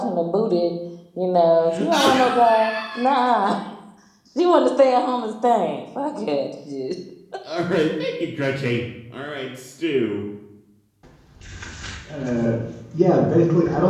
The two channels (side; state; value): both; identical; correlation 1.00